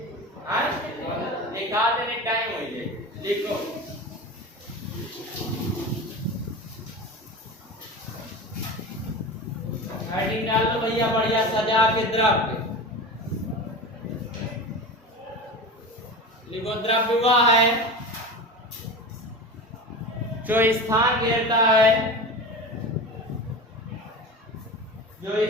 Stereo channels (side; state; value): both; normal; correlation 0.29